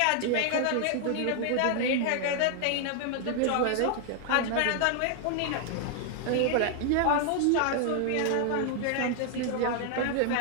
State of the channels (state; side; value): different; both; correlation 0.00